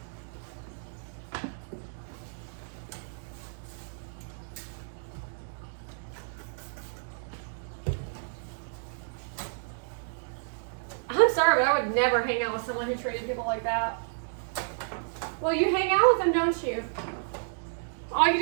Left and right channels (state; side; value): silent; left; digital silence